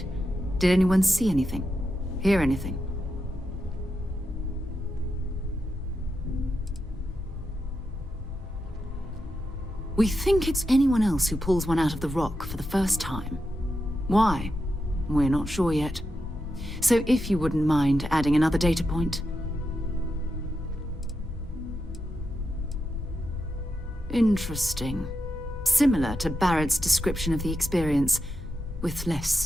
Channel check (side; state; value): left; noise; hum, 15 dB below the sound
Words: Did anyone see anything? Hear anything? We think it's anyone else who pulls one out of the rock for the first time. Why? We're not sure yet. So if you wouldn't mind adding another data point. Interesting. Similar to Barrett's description of the experience, with